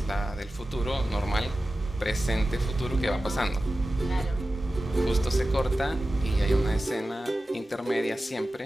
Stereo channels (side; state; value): both; normal; correlation 0.94